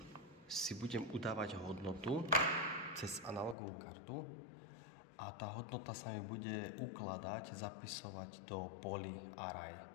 si budem udávať hodnotu cez analogovú kartu a tá hodnota sa mi bude ukladať, zapisovať do polí array.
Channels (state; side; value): drops out; right; at 3.6 s